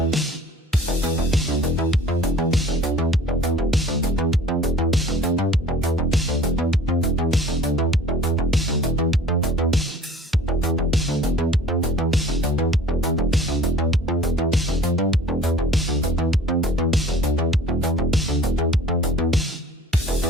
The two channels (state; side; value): normal; both; correlation 0.48